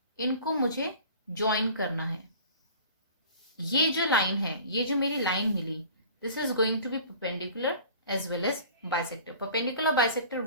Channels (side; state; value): both; inverted; correlation -0.44